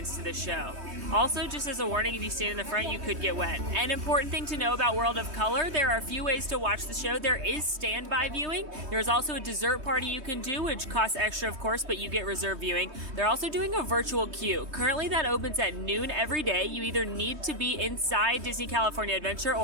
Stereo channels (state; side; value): late; left; 3.2 ms